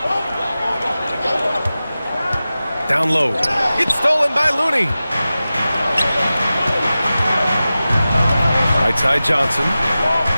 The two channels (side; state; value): both; inverted; correlation -0.95